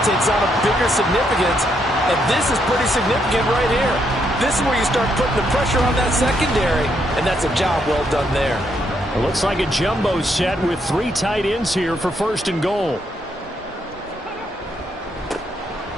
takes on a bigger significance. And this is pretty significant right here. This is where you start putting the pressure on that secondary. And that's a job well done there. It looks like a jumbo set with 3 tight ends here for 1st and goal.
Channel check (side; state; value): both; normal; correlation 0.76